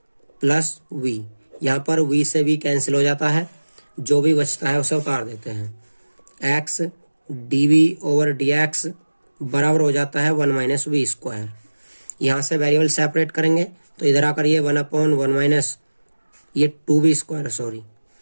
plus v। यहाँ पर v से v कैंसिल हो जाता है, जो भी बचता है उसे उतार देते हैं। x d v over d x बराबर हो जाता है 1 माइनस वी स्क्वायर। यहाँ से वेरिएबल सेपरेट करेंगे तो इधर आकर ये 1 अपॉन 1 माइनस ये 2v स्क्वायर सॉरी,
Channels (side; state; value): both; inverted; correlation -1.00